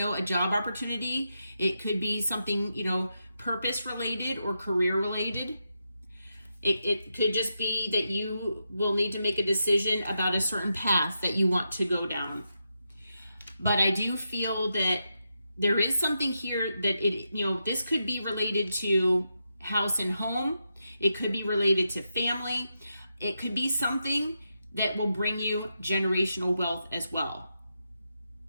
a job opportunity. It could be something, you know, purpose related or career related. It could just be that you will need to make a decision about a certain path that you want to go down. But I do feel that there is something here that this could be related to house and home. It could be related to family. It could be something that will bring you generational wealth as well.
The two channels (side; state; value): both; inverted; correlation -0.85